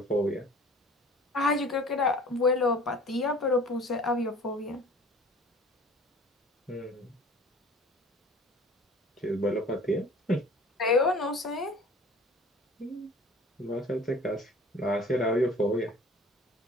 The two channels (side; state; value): both; normal; correlation 0.46